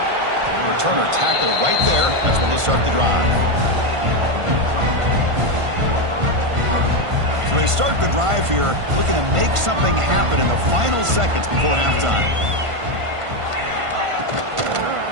Returner tackle right there. That's where they'll start the drive. So they start the drive here, looking to make something happen in the final seconds before halftime.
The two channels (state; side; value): late; left; 1.5 ms